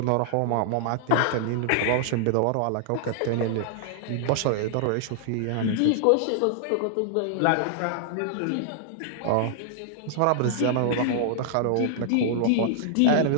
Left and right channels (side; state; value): both; different; correlation -0.01